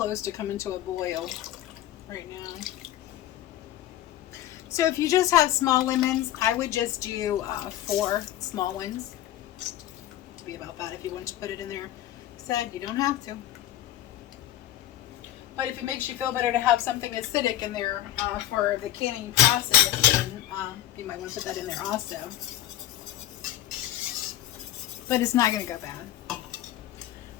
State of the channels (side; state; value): right; quieter; 13.3 dB